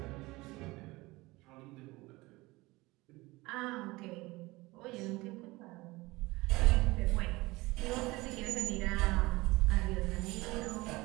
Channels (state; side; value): quieter; left; 21.4 dB